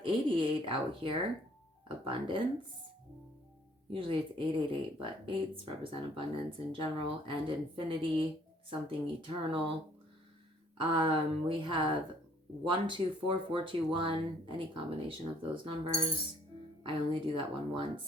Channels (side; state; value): both; normal; correlation 0.61